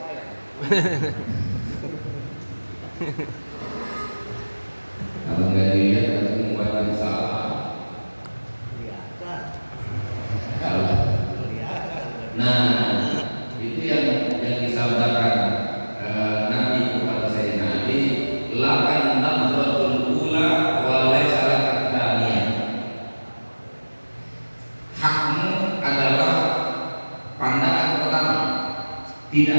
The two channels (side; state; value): both; inverted; correlation -1.00